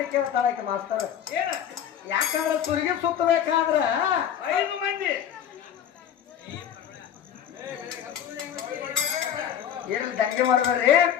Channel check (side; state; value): right; quieter; 9.4 dB